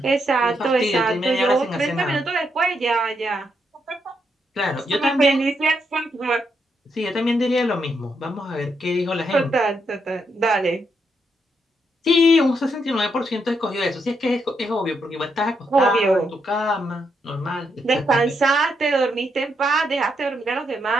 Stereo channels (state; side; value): normal; both; correlation 0.79